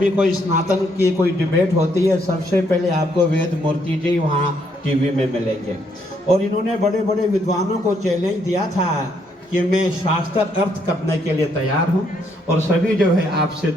कोई स्नातन की कोई डिबेट होती है सबसे पहले आपको वेद मूर्ति जी वहाँ टीवी में मिलेंगे। और इन्होंने बड़े बड़े विद्वानों को चैलेंज दिया था कि मैं शास्त्र अर्थ करने के लिए तैयार हूँ, और सभी जो है आपसे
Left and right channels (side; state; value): both; normal; correlation 0.72